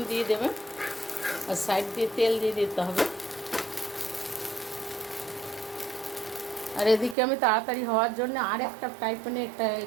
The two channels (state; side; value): drops out; left; at 7.2 s